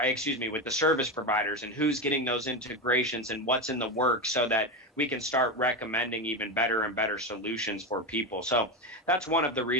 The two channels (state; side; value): normal; both; correlation 0.15